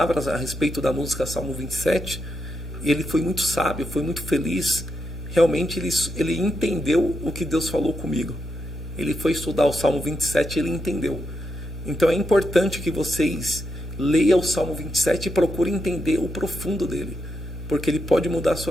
a respeito da música Salmo 27. E ele foi muito sábio, foi muito feliz. Realmente ele entendeu o que Deus falou comigo. Ele foi estudar o Salmo 27 e ele entendeu. Então é importante que vocês leiam o Salmo 27 e procurem entender o profundo dele, porque ele pode mudar a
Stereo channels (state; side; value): normal; both; correlation 0.83